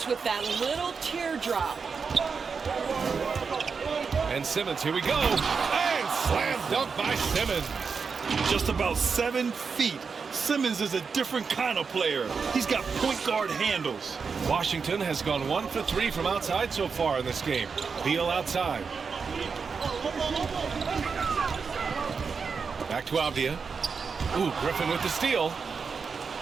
with that little teardrop. And Simmons, here we go. And slam dunk by Simmons. Just about 7 feet. Simmons is a different kind of player. He's got point guard handles. Washington has gone 1 for 3 from outside so far in this game. Beal outside. Back to Avdia. Ooh, Griffin with the steal.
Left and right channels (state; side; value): quieter; left; 5.4 dB